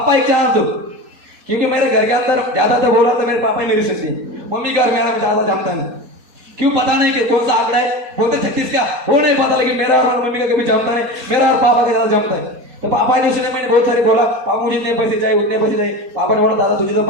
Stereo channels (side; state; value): left; late; 4.2 ms